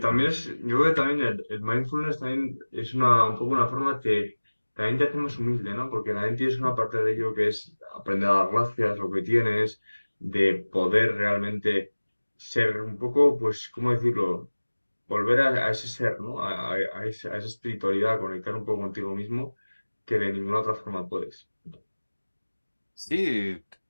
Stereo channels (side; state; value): both; inverted; correlation -1.00